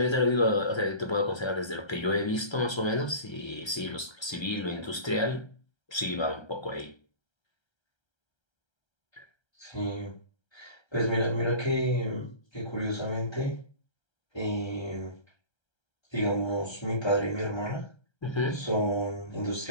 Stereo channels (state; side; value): late; right; 1.3 ms